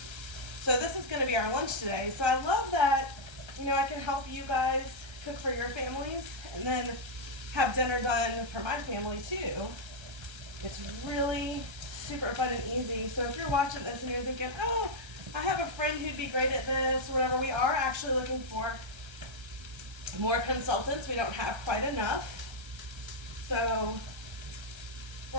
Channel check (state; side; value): late; left; 1.3 ms